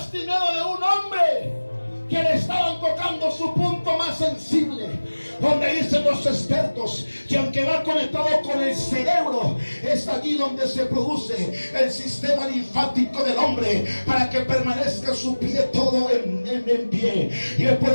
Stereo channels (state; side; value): inverted; both; correlation -1.00